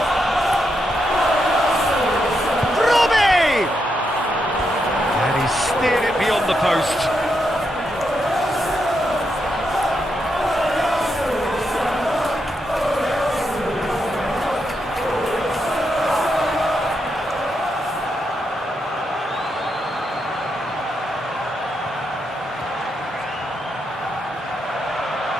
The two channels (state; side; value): normal; both; correlation 0.82